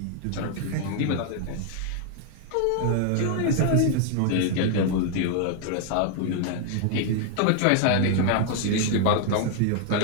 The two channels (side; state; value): both; different; correlation 0.00